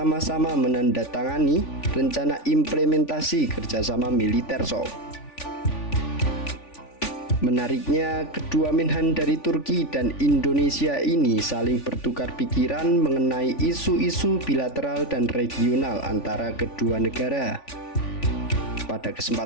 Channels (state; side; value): late; right; 3.5 ms